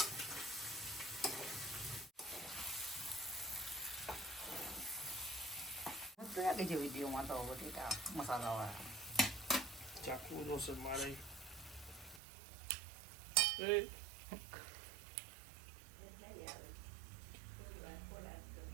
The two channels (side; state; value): left; drops out; at 12.2 s